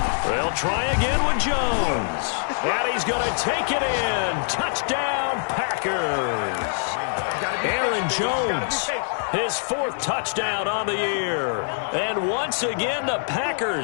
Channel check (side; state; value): right; silent; digital silence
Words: They'll try again with Jones. And he's going to take it in. Touchdown, Packers. Aaron Jones, his 4th touchdown on the year. And once again, the